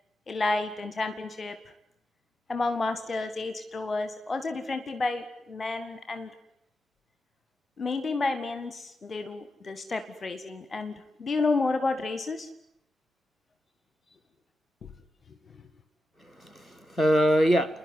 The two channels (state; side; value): normal; both; correlation 0.89